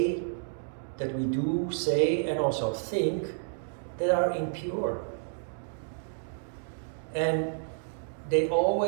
that we do say, and also think that are impure. And they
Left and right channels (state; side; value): silent; left; digital silence